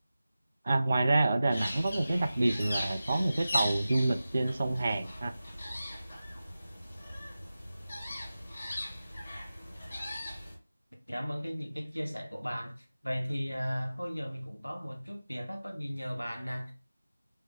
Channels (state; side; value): inverted; both; correlation -0.95